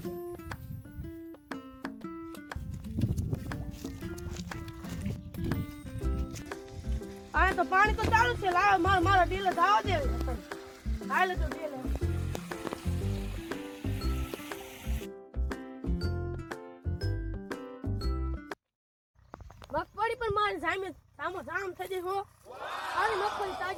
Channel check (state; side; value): identical; both; correlation 1.00